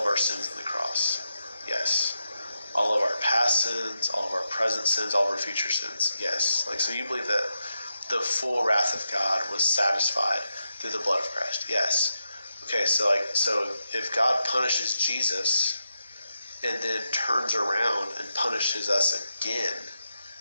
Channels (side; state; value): both; inverted; correlation -0.86